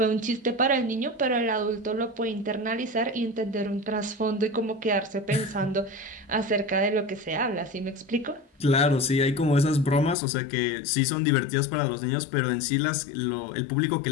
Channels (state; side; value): drops out; right; at 10.2 s